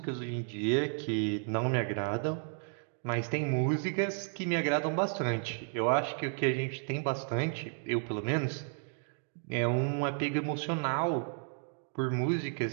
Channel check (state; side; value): silent; left; 56 dB below the other